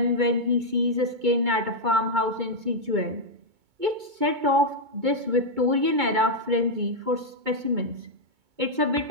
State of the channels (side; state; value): left; late; 2.2 ms